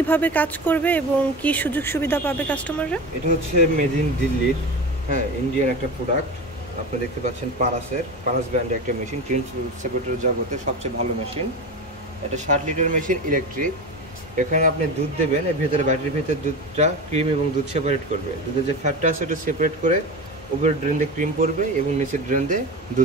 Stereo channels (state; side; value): normal; both; correlation 0.26